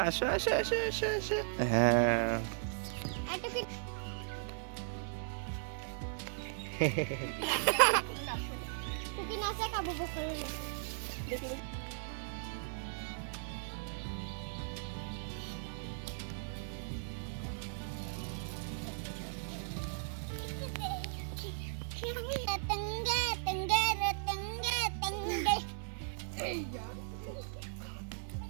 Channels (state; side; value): silent; left; digital silence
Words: আসো আসো আসো আসো আসো। হ্যাঁ